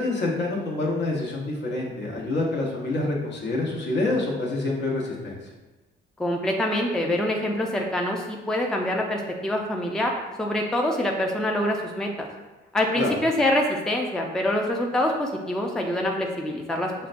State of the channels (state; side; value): normal; both; correlation 0.64